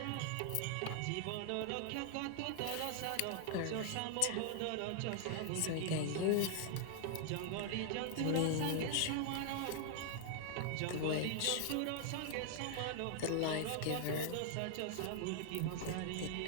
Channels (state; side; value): different; both; correlation -0.01